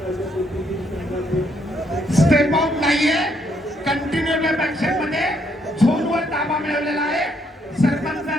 स्टेप आउट नाहीये, कंटिन्यू ऍक्शन मध्ये झोनवर ताबा मिळवलेला आहे.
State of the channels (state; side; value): normal; both; correlation 0.72